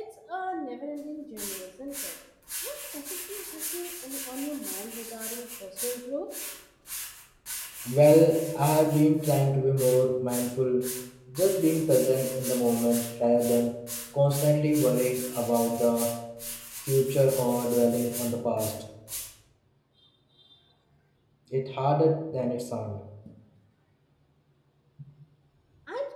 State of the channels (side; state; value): both; identical; correlation 1.00